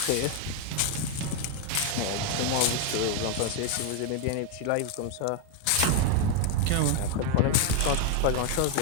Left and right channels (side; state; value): both; different; correlation 0.00